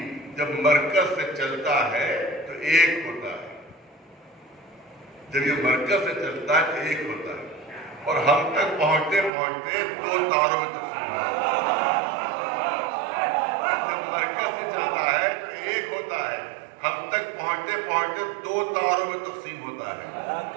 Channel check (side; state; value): left; drops out; at 9.3 s